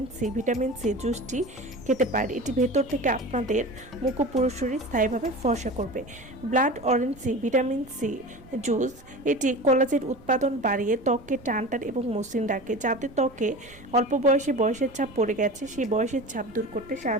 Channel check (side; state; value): right; noise; rumble, 22 dB below the sound